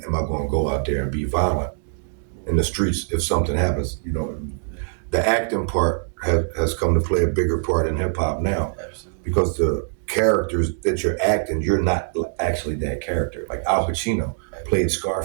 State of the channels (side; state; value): left; silent; 63 dB below the other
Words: am I going to go out there and be violent in the streets if something happens? You know, the acting part has come to play a bigger part in hip hop now. Absolutely. Because the characters that you're acting, you're not actually that character. Like Al Pacino played